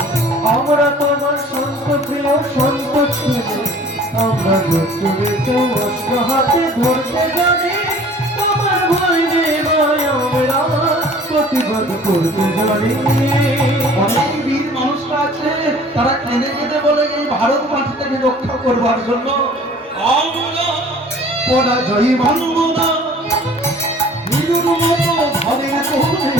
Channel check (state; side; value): normal; both; correlation 0.49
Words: আমরা তোমার সন্ত প্রিয় সন্ত ছেলে আমরা অস্ত্র হাতে ধরতে জানি। প্রতিবাদ করতে জানি। অনেক বীর মানুষরা আছে, তারা কেঁদে কেঁদে বলে এই ভারত মাটিটাকে রক্ষা করবার জন্য আমরা পরাজয় মানব না, নিজের মতো ঘরের কোণে